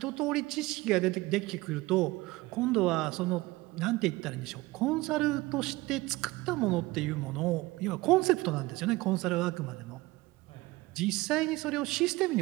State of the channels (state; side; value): quieter; left; 20.4 dB